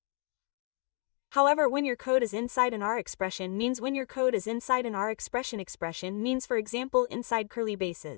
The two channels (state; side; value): quieter; right; 37.6 dB